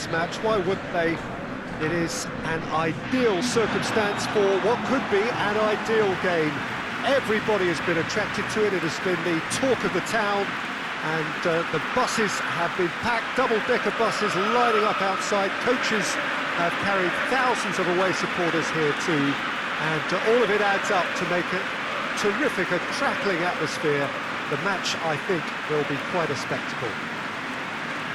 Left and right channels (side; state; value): both; identical; correlation 1.00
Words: match. Why wouldn't they? It is an ideal circumstance for what could be an ideal game. Everybody has been attracted to it. It has been the talk of the town, and the buses have been packed, double-decker buses lining up outside. Coaches have carried thousands of away supporters here too. And all of it adds up to make a terrific, a crackling atmosphere. The match, I think, will be quite a spectacle.